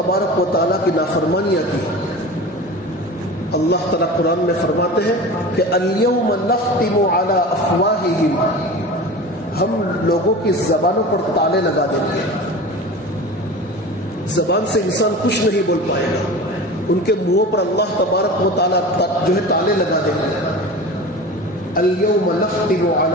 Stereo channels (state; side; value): normal; both; correlation 0.34